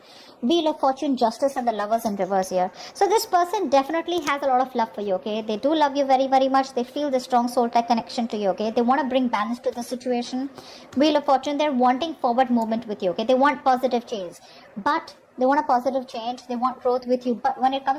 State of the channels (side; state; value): both; identical; correlation 1.00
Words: Wheel of Fortune, Justice, and the Lovers in reverse here. So this person definitely has a lot of love for you, okay? They do love you very, very much. They feel the strong soul-type connection to you, okay? They want to bring balance to the situation. Wheel of Fortune, they're wanting forward movement with you, okay? They want positive change. But they want a positive change. They want growth with you. But when it